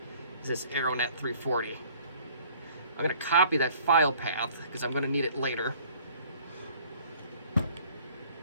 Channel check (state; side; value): inverted; both; correlation -0.54